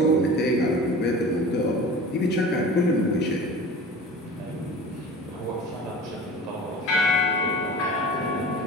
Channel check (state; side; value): normal; both; correlation 0.37